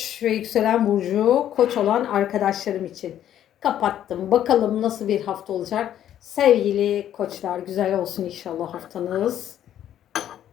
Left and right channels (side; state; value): right; quieter; 11.1 dB